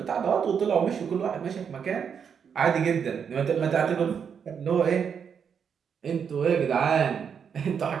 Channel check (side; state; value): left; quieter; 7.1 dB